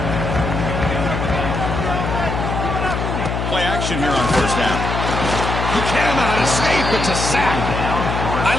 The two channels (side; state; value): left; noise; hum, 2 dB below the sound